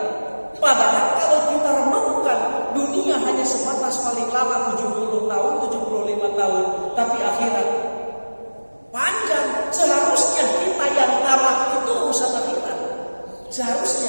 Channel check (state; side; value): inverted; both; correlation -1.00